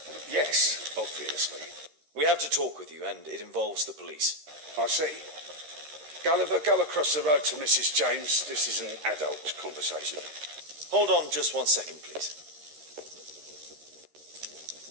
Yes, obviously. We have to talk with you, and it involves the police. I see. Gulliver, go across the road to Mrs. James. This is an adult conversation. Hold on just 1 second, please.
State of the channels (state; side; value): late; left; 13 ms